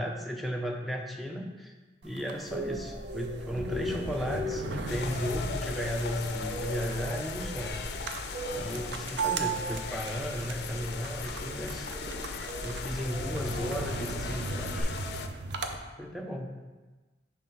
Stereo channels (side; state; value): both; normal; correlation 0.56